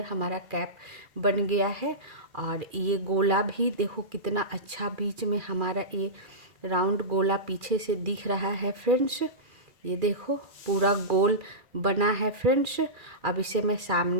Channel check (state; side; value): late; left; 2.4 ms